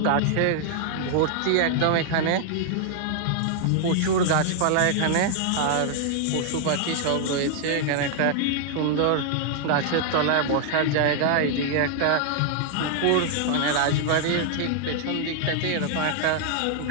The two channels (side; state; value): both; different; correlation 0.00